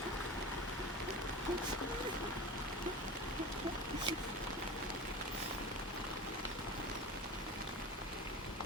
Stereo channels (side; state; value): both; normal; correlation 0.31